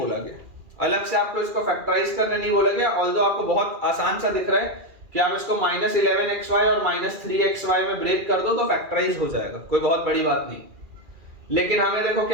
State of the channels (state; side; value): late; left; 2.4 ms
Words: गया, अलग से आपको इसको फैक्टराइज करने नहीं बोला गया। ऑल्दो आपको बहुत आसान सा दिख रहा है कि आप इसको माइनस 11xy और माइनस 3xy में ब्रेक कर दो तो फैक्टराइज हो जाएगा, कोई बहुत बड़ी बात नहीं। लेकिन हमें देखो